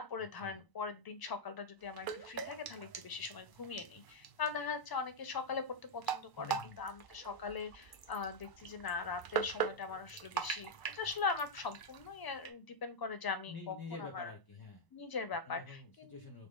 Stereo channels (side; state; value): right; late; 1.0 ms